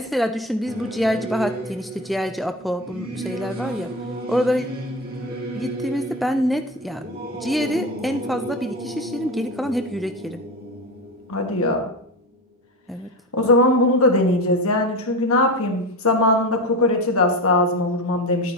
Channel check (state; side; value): normal; both; correlation 0.24